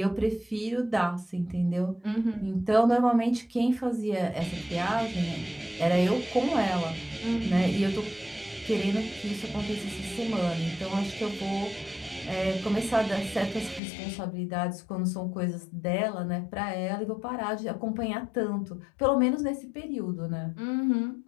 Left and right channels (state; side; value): drops out; right; at 13.8 s